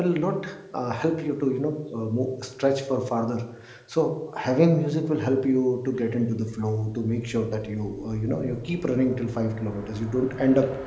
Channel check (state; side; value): identical; both; correlation 1.00